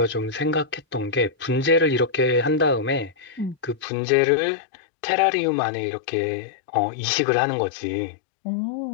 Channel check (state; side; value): drops out; right; at 3.9 s